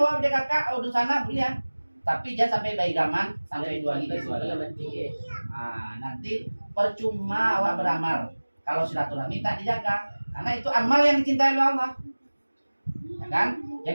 dia kakak udah sana boleh. Tapi jangan sampai baik gaman sampai 2 hari. Nanti percuma awak beramal kalau silaturahmi tak dijaga, karena itu amal yang dicintai oleh Allah. Ya kan?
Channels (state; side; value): inverted; both; correlation -1.00